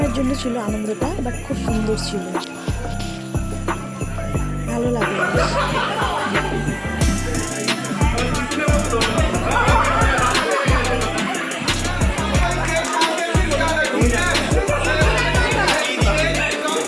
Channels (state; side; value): identical; both; correlation 1.00